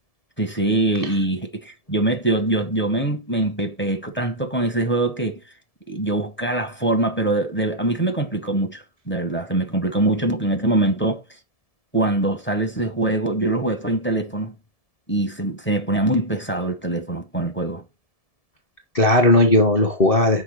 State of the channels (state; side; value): late; right; 1.7 ms